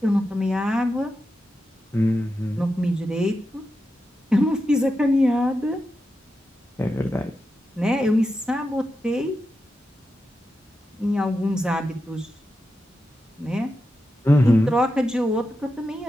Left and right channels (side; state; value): both; normal; correlation 0.89